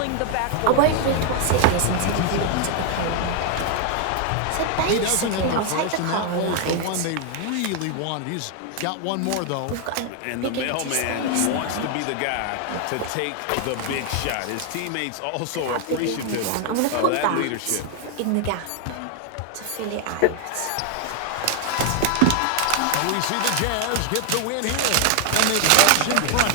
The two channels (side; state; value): both; different; correlation 0.00